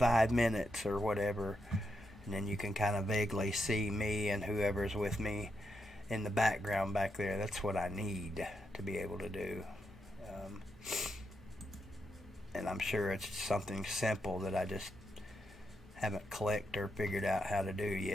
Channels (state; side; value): normal; both; correlation 0.83